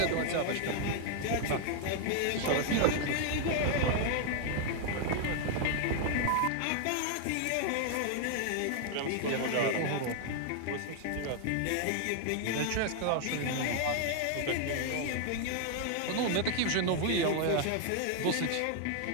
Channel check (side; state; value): both; different; correlation 0.00